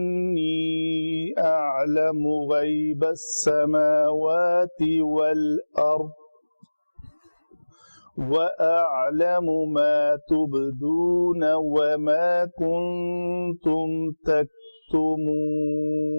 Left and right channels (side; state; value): both; inverted; correlation -1.00